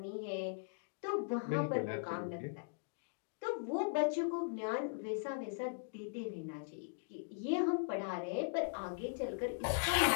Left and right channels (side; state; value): right; silent; digital silence